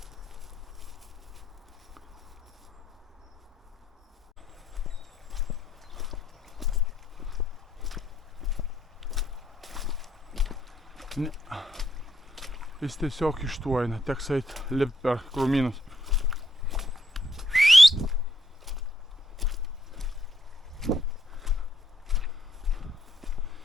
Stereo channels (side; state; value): both; normal; correlation 0.75